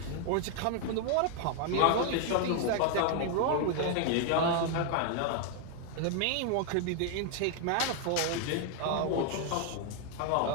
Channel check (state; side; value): different; both; correlation 0.00